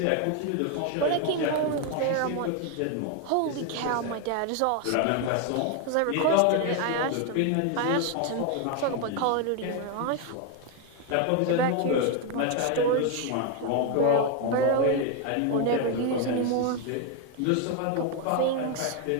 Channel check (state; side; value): different; both; correlation 0.01